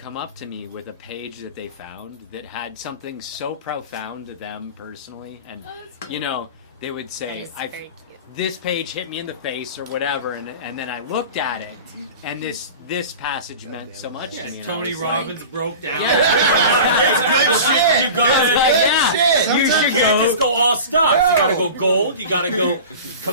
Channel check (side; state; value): both; inverted; correlation -0.35